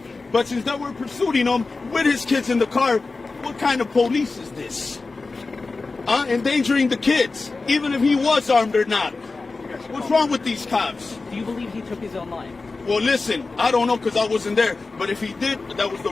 but since they were pursuing him with his kids in the car, what kind of police is this? Endangering the kids, even if he was armed or not. What's wrong with these cops? Do you believe he took his own life? Well, listen, I don't know because I wasn't there, but if he did, that was the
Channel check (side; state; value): right; quieter; 3.8 dB